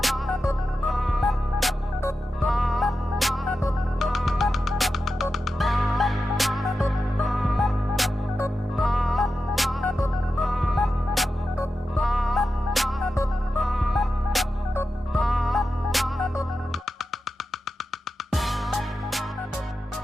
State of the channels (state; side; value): normal; both; correlation 0.91